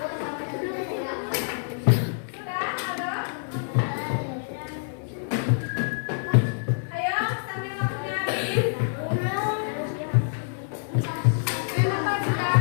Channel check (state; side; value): silent; right; digital silence